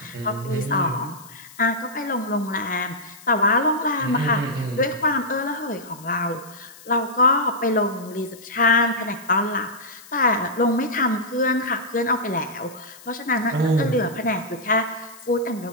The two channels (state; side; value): noise; left; hiss, 21 dB below the sound